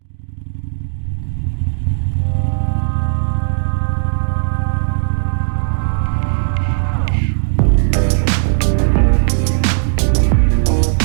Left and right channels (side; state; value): left; silent; digital silence